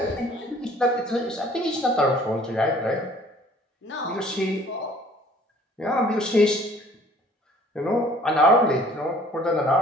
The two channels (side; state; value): both; normal; correlation 0.54